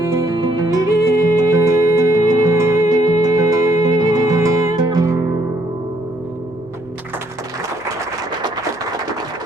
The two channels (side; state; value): both; normal; correlation 0.69